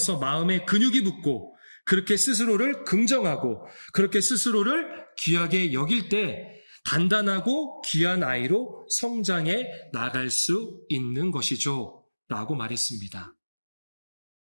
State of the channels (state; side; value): inverted; both; correlation -1.00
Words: 마음에 근육이 붙고 그렇게 스스로를 긍정하고 그렇게 스스로를 귀하게 여길 때 단단하고 귀한 아이로 성장해 나갈 수 있는 것이죠. 라고 말했습니다.